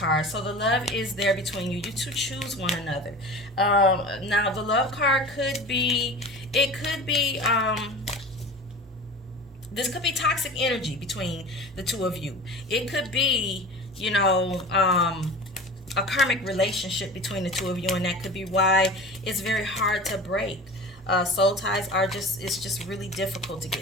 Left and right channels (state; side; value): normal; both; correlation 0.35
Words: So the love is there between you. You two choose one another. Now the love card could be, this could be toxic energy between the two of you. It could be, a karmic relationship between the two of you, and that could be why it's very hard to break. Soul ties it's just really difficult to